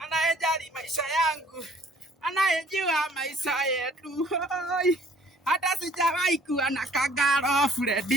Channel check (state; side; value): normal; both; correlation 0.57